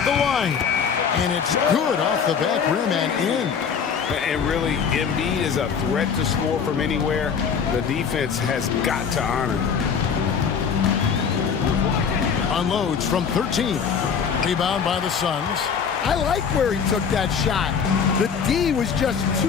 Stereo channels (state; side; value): quieter; right; 6.6 dB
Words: the line. And it's good off the back rim and in. And really, Embiid is a threat to score from anywhere. The defense has got to honor him. Unloads from 13. Rebound by the Suns. I like where he took that shot. The D was just